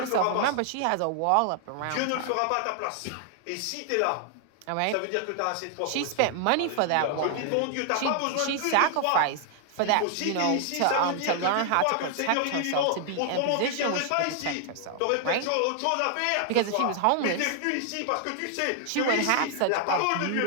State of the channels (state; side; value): different; both; correlation 0.00